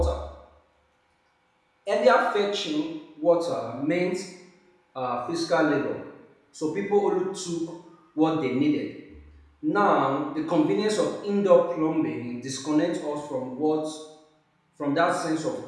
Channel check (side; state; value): both; identical; correlation 1.00